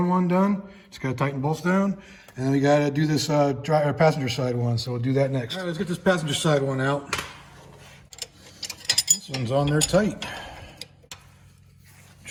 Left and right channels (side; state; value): both; identical; correlation 1.00